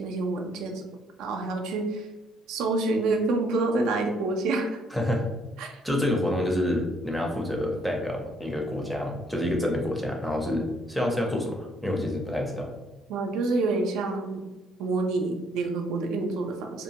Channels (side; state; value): both; normal; correlation 0.67